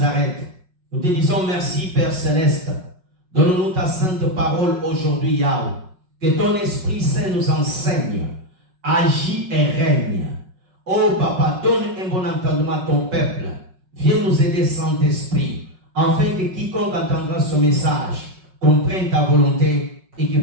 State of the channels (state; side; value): late; left; 5.4 ms